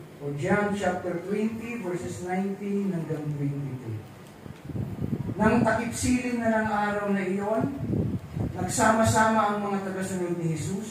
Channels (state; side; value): identical; both; correlation 1.00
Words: O John chapter 20, verses 19 hanggang 22. Nang takip-silim na ng araw na iyon, nagsama-sama ang mga tagasunod ni